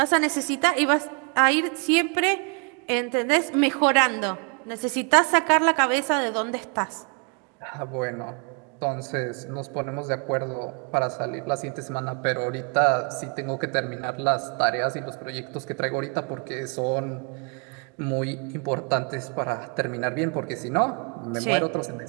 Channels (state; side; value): quieter; left; 36.0 dB